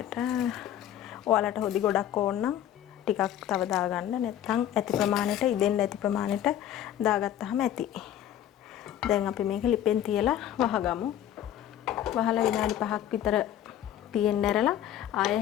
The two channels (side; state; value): right; quieter; 11.2 dB